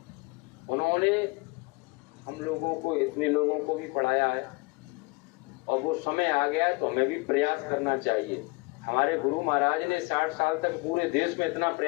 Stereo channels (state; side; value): quieter; right; 26.5 dB